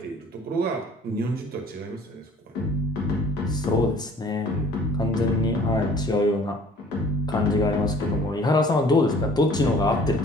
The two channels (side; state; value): both; normal; correlation 0.52